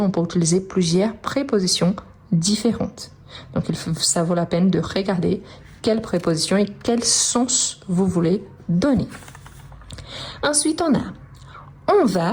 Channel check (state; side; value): identical; both; correlation 1.00